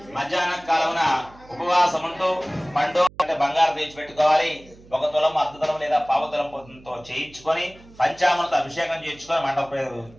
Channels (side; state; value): right; noise; hum, 24 dB below the sound